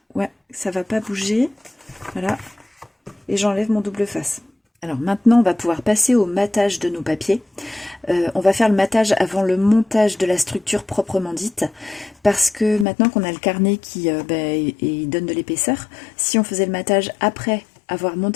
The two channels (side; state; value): right; drops out; at 12.9 s